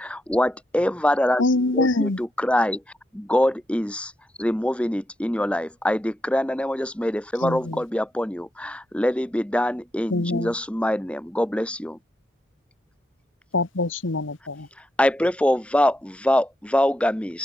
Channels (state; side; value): normal; both; correlation 0.82